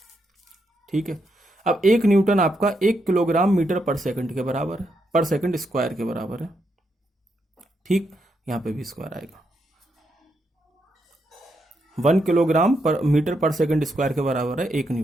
ठीक है, अब 1 न्यूटन आपका 1 किलोग्राम मीटर पर सेकंड के बराबर है, पर सेकंड स्क्वायर के बराबर है। ठीक, यहां पे भी स्क्वायर आएगा। 1 किलोग्राम पर मीटर पर सेकंड स्क्वायर के बराबर है 1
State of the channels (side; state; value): both; normal; correlation 0.81